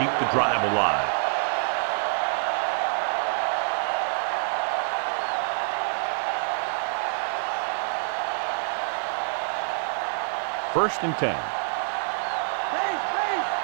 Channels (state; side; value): silent; left; digital silence